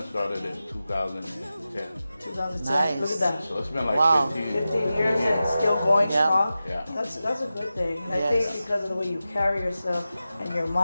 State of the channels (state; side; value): inverted; both; correlation -0.93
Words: started in 2010. 2010. Look Nice. at that. So it's been like Wow. 15 years and it's still going Yeah. strong. Yeah. That's a good thing. And I Yes. think because of the way you carry yourself and your